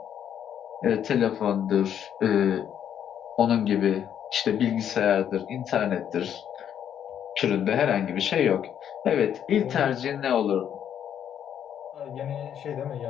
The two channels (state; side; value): quieter; right; 9.3 dB